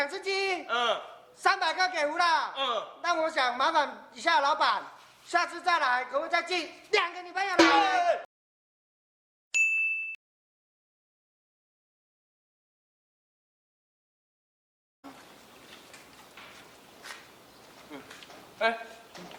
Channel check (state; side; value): identical; both; correlation 1.00